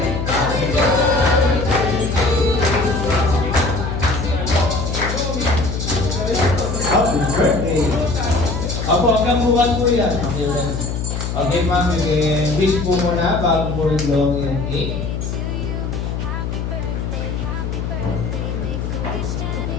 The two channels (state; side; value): noise; left; hum, 3 dB below the sound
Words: Huwag kang bukas po yan. Okay, ma'am. Wish po muna bago po yung long yung cake.